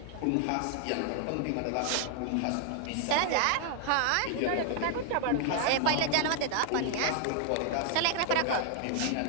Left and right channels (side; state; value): both; different; correlation 0.00